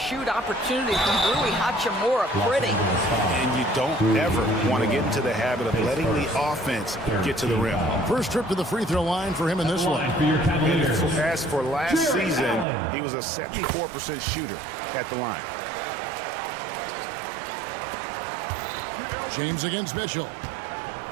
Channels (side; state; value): left; drops out; at 12.7 s